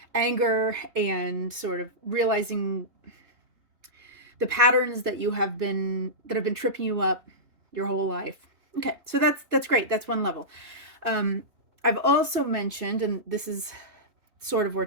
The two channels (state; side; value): late; left; 3.1 ms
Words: anger and sort of realizing the patterns that have been tripping you up your whole life. Okay, so that's great. That's one level. I've also mentioned, and this is sort of where